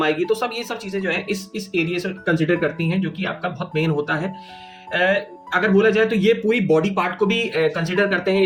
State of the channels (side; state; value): both; identical; correlation 1.00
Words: आएगी, तो सब ये सब चीजें जो है इस एरिया से कंसिडर करती हैं, जो कि आपका बहुत मेन होता है। अगर बोला जाए तो ये पूरी बॉडी पार्ट को भी कंसिडर करते हैं